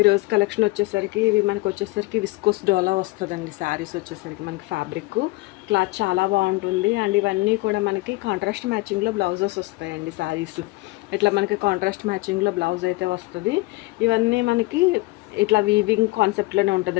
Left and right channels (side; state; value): right; quieter; 22.0 dB